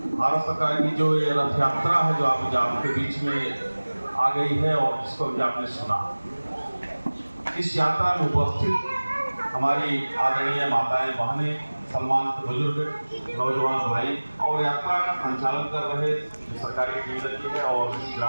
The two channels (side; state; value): both; inverted; correlation -1.00